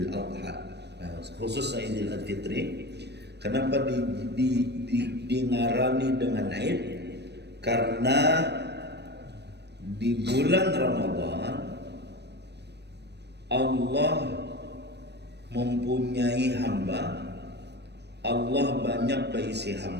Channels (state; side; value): late; left; 0.49 ms